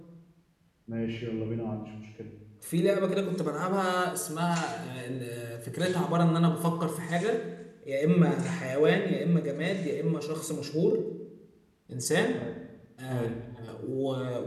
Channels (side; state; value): both; identical; correlation 1.00